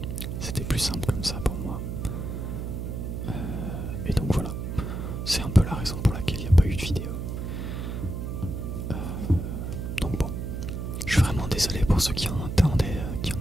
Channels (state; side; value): noise; right; hum, 4 dB below the sound